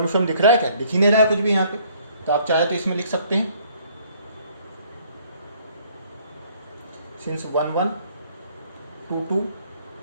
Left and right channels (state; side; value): inverted; both; correlation -0.61